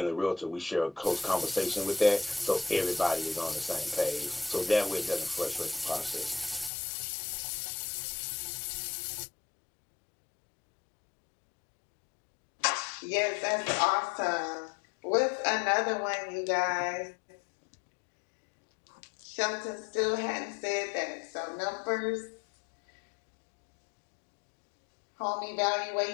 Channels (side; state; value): right; drops out; at 6.7 s